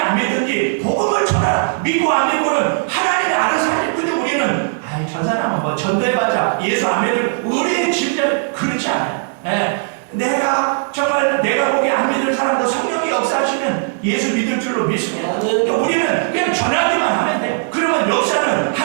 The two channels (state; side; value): silent; left; digital silence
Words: 믿든지 복음을 전하라. 믿고 안 믿고는 하나님이 알아서 하지. 근데 우리는 저 사람은 뭐 전도해봤자 예수 안 믿을 우리의 짐작은 그렇지 않아요. 내가 정말 내가 보기 안 믿을 사람도 성령이 역사하시면 예수 믿을 줄로 믿습니다. 우리는 그냥 전하기만 하면 돼요. 그러면 역사는